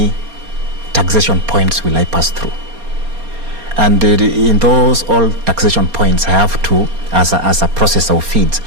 taxation points will I pass through? And in those all taxation points, I have to, as a processor of feeds,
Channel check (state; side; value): late; left; 4.3 ms